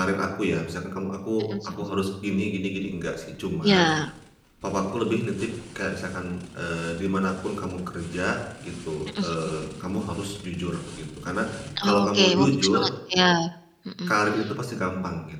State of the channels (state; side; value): identical; both; correlation 1.00